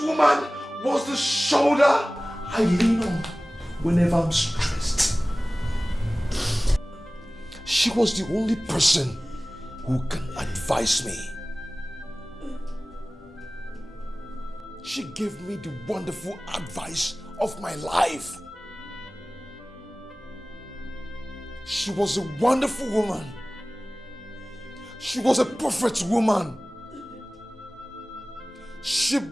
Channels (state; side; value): normal; both; correlation 0.98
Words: woman was the shoulder I lean on whenever I'm stressed. She was the only person who can advise me. She gave me the wonderful advice of my life. She was a wonderful woman. She was a perfect woman. She